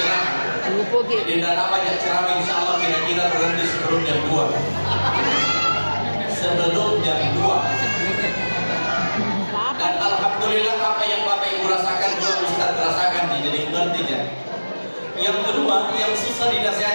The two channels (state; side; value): inverted; both; correlation -1.00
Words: Jadi tidak banyak ceramah, insyaallah kira-kira berhenti sebelum jam 2. Sebelum jam 2. Dan alhamdulillah apa yang Bapak Ibu rasakan juga Ustaz rasakan, jadi ngerti ya. Yang kedua, yang susah